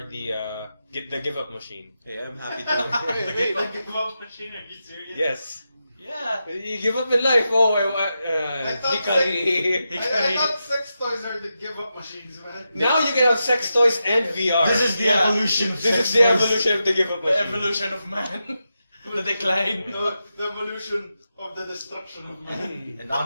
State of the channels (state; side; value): inverted; both; correlation -0.88